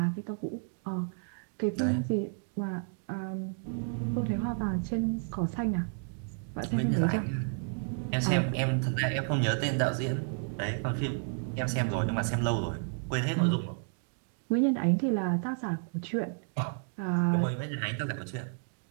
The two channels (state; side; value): silent; left; 56 dB below the other